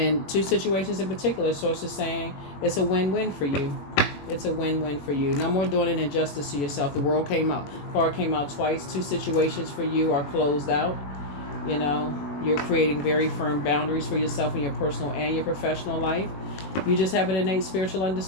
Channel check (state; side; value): late; right; 21 ms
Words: two situations in particular, Source is saying it's a win-win for you. It's a win-win for you. No more doing an injustice to yourself. The world card came out twice. Two situations for you are closed out. You're creating very firm boundaries for yourself in your personal and your professional life. You just have an innate spiritual